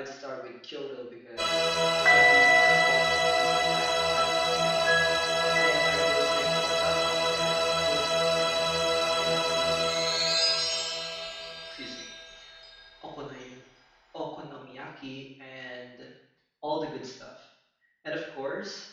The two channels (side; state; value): both; identical; correlation 1.00